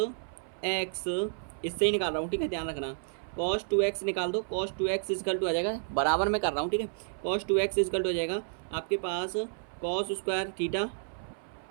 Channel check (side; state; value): left; silent; 57 dB below the other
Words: x इससे ही निकाल रहा हूँ, ठीक है, ध्यान रखना। cos 2x निकाल दो, cos 2x इजकल टू आ जाएगा, बराबर में कर रहा हूँ, ठीक है। cos 2x इजकल टू हो जाएगा आपके पास cos square theta